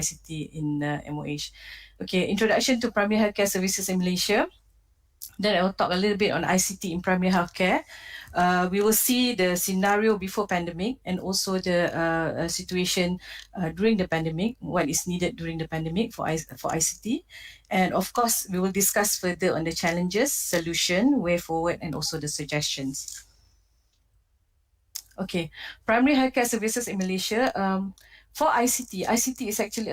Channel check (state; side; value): identical; both; correlation 1.00